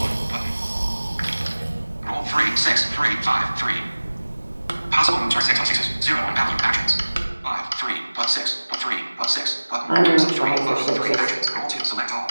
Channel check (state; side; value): inverted; both; correlation -1.00